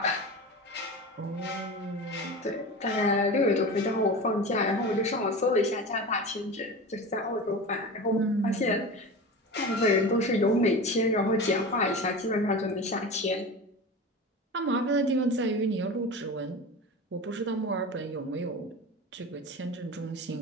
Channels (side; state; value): both; normal; correlation 0.30